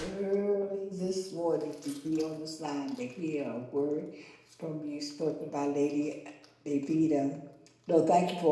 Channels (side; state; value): both; identical; correlation 1.00